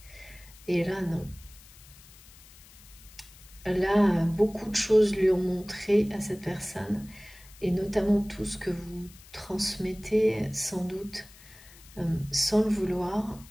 Et là, non. Là, beaucoup de choses lui ont montré à cette personne, et notamment tout ce que vous transmettez, sans doute, sans le vouloir,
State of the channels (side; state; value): left; noise; hiss, 22 dB below the sound